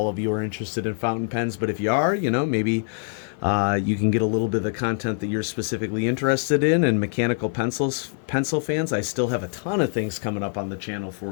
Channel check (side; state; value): right; silent; 56 dB below the other